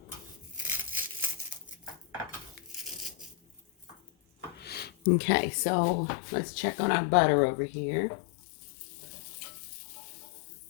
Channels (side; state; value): right; drops out; at 4.9 s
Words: Okay, so let's check on our butter over here.